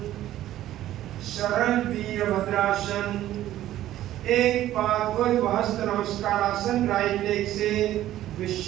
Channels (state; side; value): quieter; left; 13.4 dB